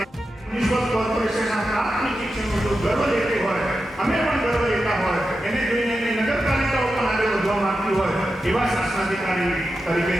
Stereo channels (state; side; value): normal; both; correlation 0.90